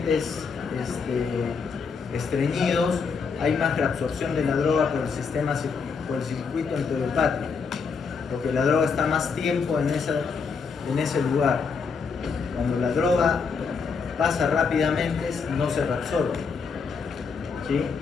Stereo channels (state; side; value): quieter; right; 5.4 dB